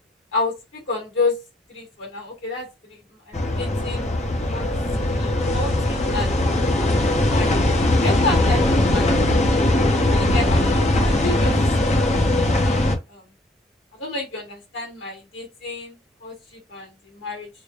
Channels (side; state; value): both; normal; correlation 0.66